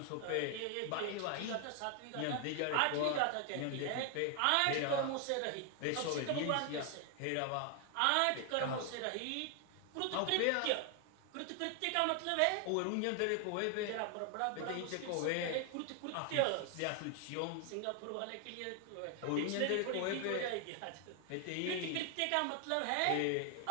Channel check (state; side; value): different; both; correlation 0.00